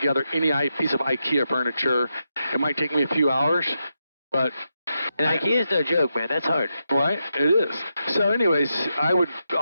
any piece of IKEA furniture. It might take me a few hours, but and IKEA is no joke, man. That's hard. Right? It is. So anyways, I would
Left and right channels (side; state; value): both; inverted; correlation -0.85